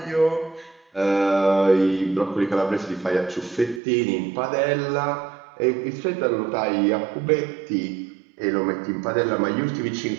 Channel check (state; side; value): drops out; left; at 3.8 s